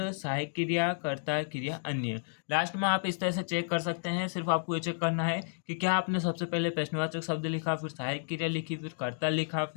सहायक क्रिया, कर्ता क्रिया, अन्य। लास्ट में आप इस तरह से चेक कर सकते हैं। सिर्फ आपको ये चेक करना है कि क्या आपने सबसे पहले प्रश्नवाचक शब्द लिखा, फिर सहायक क्रिया लिखी, फिर कर्ता लिखा,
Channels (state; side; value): silent; right; digital silence